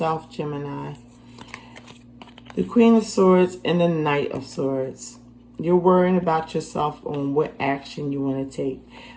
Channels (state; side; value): identical; both; correlation 1.00